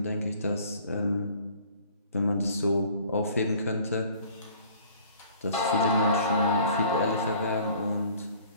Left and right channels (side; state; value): both; inverted; correlation -0.53